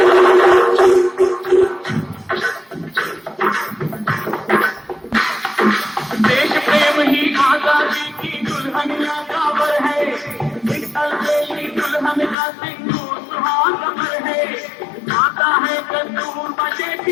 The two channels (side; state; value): right; drops out; at 12.4 s